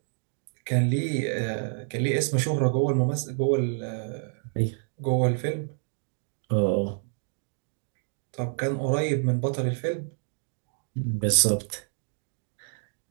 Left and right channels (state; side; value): silent; left; 55 dB below the other